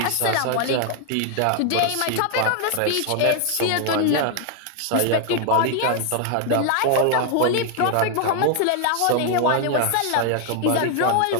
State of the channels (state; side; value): different; both; correlation 0.00